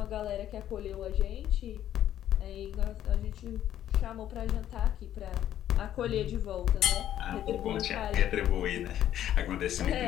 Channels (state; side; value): quieter; right; 11.5 dB